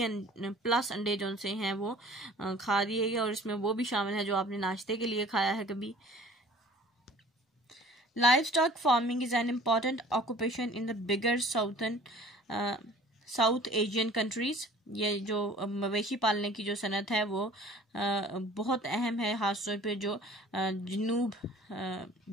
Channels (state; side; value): normal; both; correlation 0.49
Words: प्लस अंडे जो से हैं वो खा दिए गए, और इसमें वो भी शामिल है जो आपने नाश्ते के लिए खाया है कभी। Livestock farming is an important occupation in the bigger South Asian countries. ये जो मवेशी पालने की जो सनत है वो बहुत अहम है, खासतौर पे जो